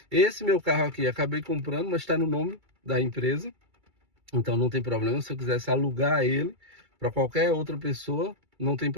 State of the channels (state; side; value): late; left; 2.3 ms